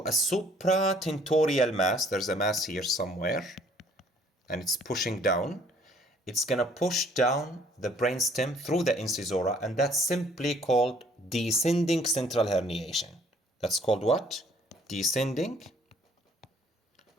a supratentorial mass, there's a mass here somewhere, and it's pushing down, it's gonna push down the brainstem through the incisora, and that's simply called descending central herniation. That's called what? Descending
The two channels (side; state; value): both; normal; correlation 0.59